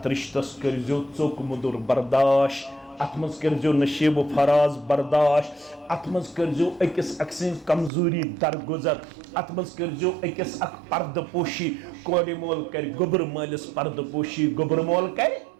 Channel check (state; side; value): drops out; left; at 7.9 s